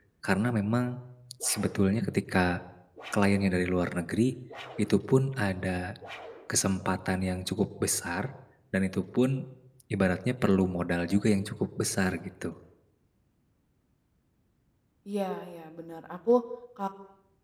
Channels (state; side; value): identical; both; correlation 1.00